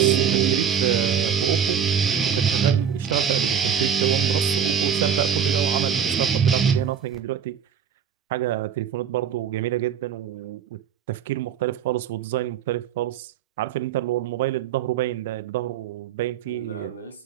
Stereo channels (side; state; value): left; quieter; 8.0 dB